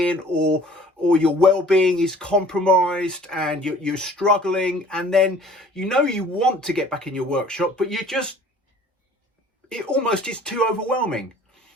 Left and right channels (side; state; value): both; normal; correlation 0.51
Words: or your well-being is compromised and you're struggling, and then you want to get back in your workshop, but it almost is too overwhelming.